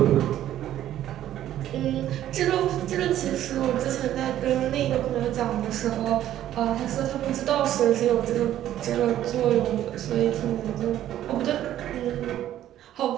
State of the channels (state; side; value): quieter; left; 12.2 dB